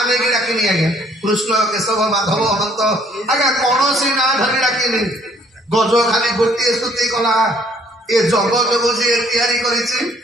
ନେଇକି ଡାକିନି। ଆଜ୍ଞା କୃଷ୍ଣ କେଶବ ମାଧବ ଅନନ୍ତ ଆଜ୍ଞା କୌଣସି ନାଁ ଧରି ଡାକିନି। ଗଜ ଖାଲି ଗୋଟିଏ ସ୍ତୁତି କଲା, ଏ ଜଗତକୁ ଯିଏ ତିଆରି କରିଛି,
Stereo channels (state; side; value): normal; both; correlation 0.62